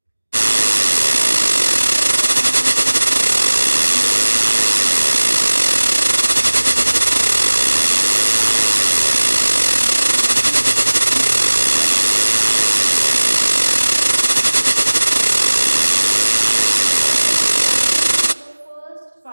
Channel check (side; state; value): both; inverted; correlation -1.00